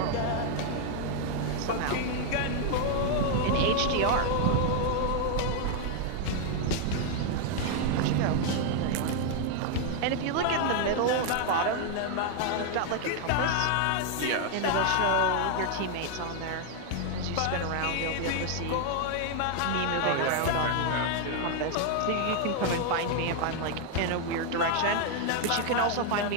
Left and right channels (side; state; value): both; different; correlation 0.00